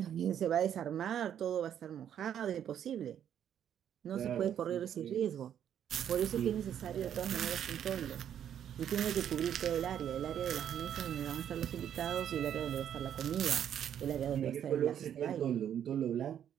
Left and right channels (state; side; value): quieter; left; 9.6 dB